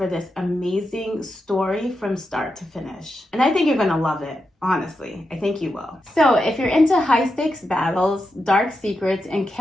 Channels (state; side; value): normal; both; correlation 0.87